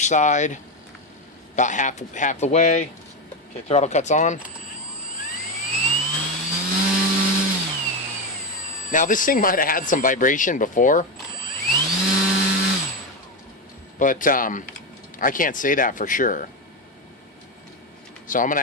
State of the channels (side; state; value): both; normal; correlation 0.13